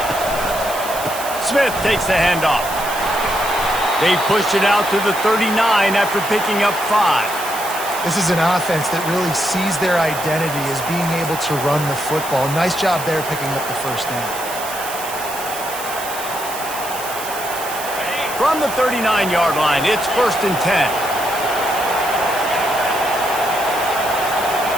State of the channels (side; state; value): right; noise; hiss, 10 dB below the sound